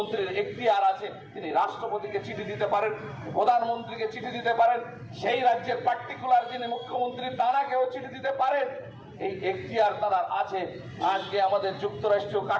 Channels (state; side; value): identical; both; correlation 1.00